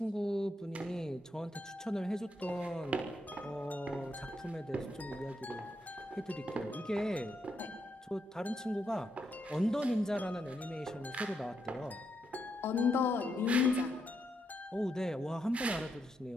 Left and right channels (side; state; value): both; normal; correlation 0.81